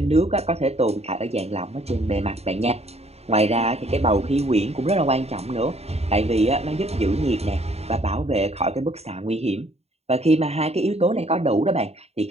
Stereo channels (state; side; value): late; left; 0.30 ms